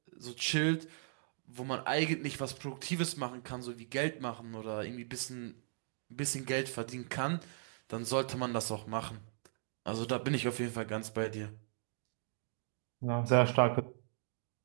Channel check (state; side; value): silent; left; digital silence